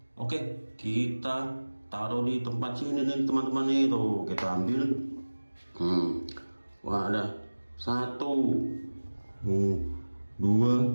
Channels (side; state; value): both; inverted; correlation -1.00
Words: Oke, kita taruh di tempat sini nih teman-teman nih. Tuh, kita ambil. Wah, ada 1, 2,